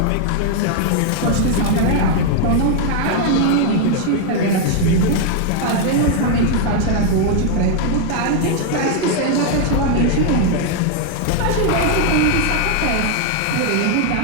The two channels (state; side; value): different; both; correlation 0.00